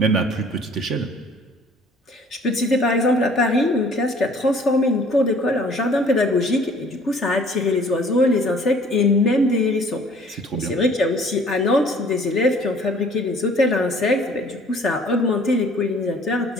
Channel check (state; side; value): normal; both; correlation 0.54